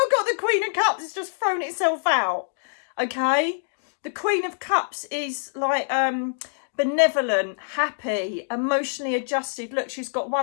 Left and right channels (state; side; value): silent; right; digital silence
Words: got the Queen of Cups. It's just thrown itself out. Okay, the Queen of Cups is like benevolent, happy, emotionally adjusted. Look, she's got